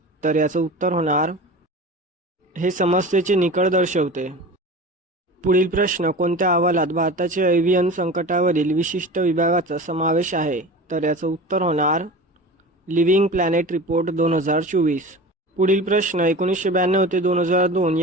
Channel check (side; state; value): both; normal; correlation 0.34